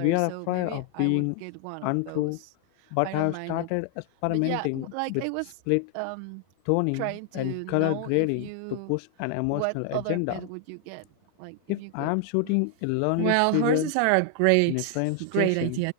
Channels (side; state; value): both; different; correlation 0.00